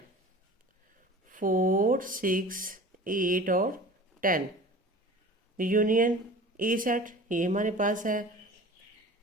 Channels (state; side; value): normal; both; correlation 0.40